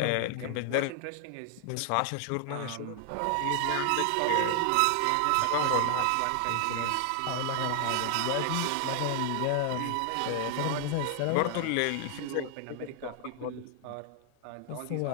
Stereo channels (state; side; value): different; both; correlation 0.00